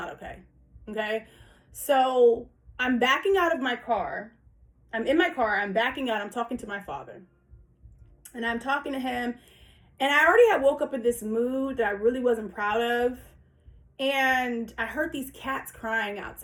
okay. Okay? So I'm backing out of my car. I'm in my car. I'm backing out. I'm talking to my father. And I'm talking to him, and I already had woke up in this mood that I really wasn't proud of. And I heard these cats crying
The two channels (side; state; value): both; identical; correlation 1.00